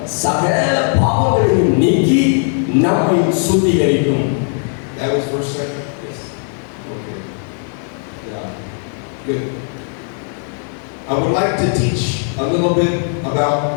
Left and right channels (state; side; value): silent; right; 56 dB below the other